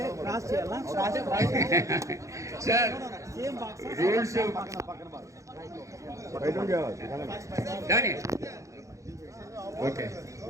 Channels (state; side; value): late; left; 0.15 ms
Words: సార్ రూల్స్ దాని ఓకే.